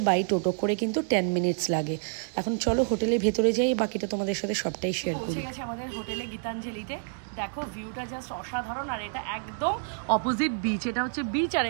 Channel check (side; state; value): left; silent; 59 dB below the other